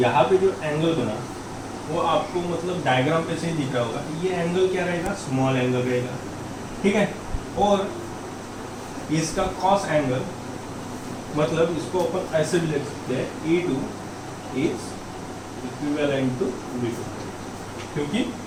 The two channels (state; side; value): identical; both; correlation 1.00